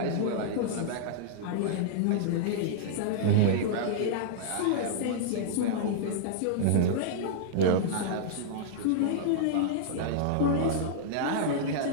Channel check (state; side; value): different; both; correlation -0.02